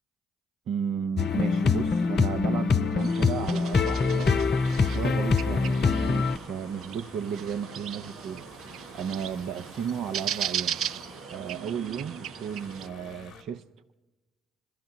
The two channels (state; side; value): normal; both; correlation 0.73